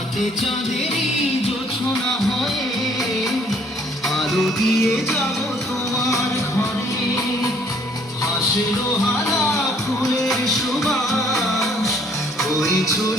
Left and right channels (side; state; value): both; normal; correlation 0.62